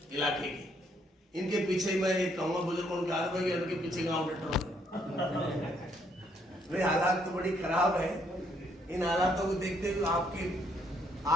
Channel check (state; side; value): normal; both; correlation 0.70